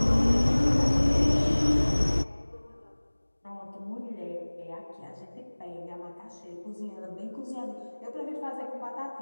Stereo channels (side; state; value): both; inverted; correlation -1.00